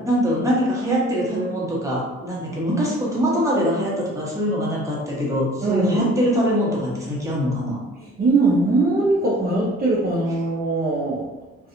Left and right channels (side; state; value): both; normal; correlation 0.50